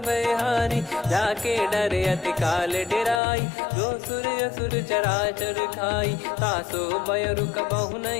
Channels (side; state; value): right; drops out; at 3.2 s